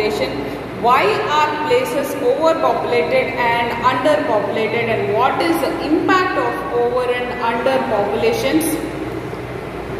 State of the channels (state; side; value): identical; both; correlation 1.00